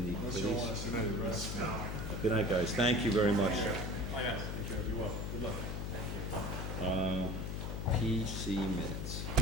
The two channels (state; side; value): noise; left; hum, 3 dB below the sound